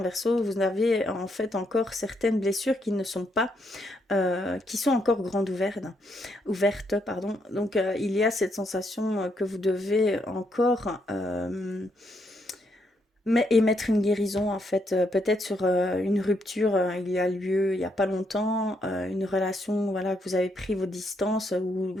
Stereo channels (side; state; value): both; normal; correlation 0.76